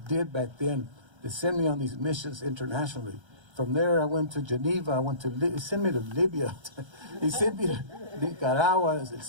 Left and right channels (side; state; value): left; late; 1.3 ms